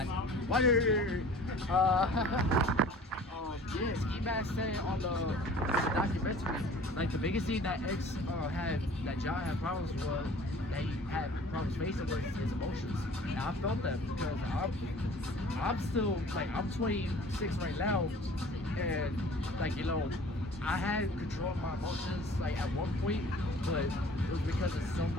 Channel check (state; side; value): normal; both; correlation 0.47